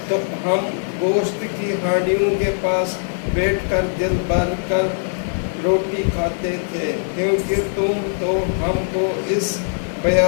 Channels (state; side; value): silent; right; digital silence